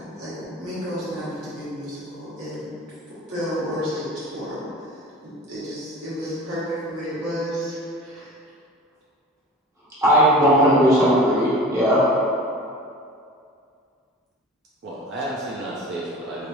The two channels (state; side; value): normal; both; correlation 0.38